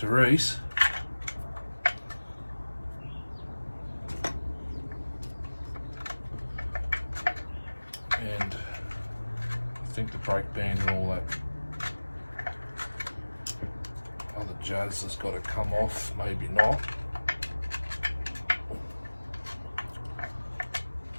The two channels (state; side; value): inverted; both; correlation -1.00